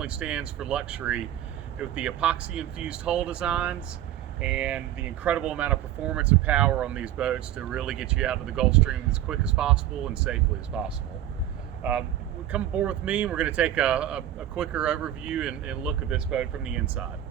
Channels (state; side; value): quieter; left; 12.1 dB